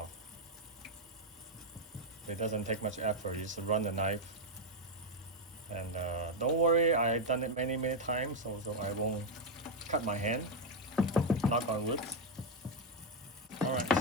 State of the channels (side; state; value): both; normal; correlation 0.02